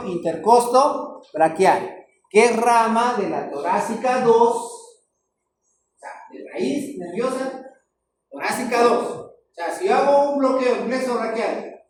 intercosto braquial, que es rama de la torácica 2, o sea, de raíz nerviosa torácica 2. O sea, si yo hago un bloqueo en plexo braquial,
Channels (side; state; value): both; identical; correlation 1.00